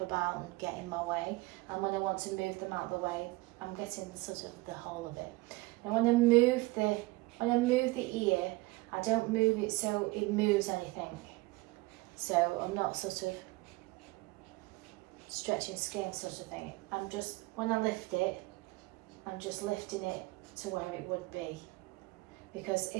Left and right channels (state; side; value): quieter; left; 22.0 dB